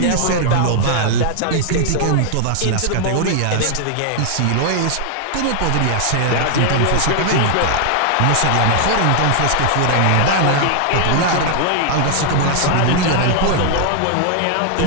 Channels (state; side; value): different; both; correlation 0.00